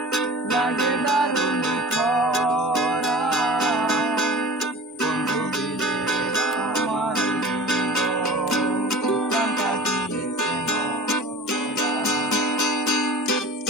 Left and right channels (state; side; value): normal; both; correlation 0.39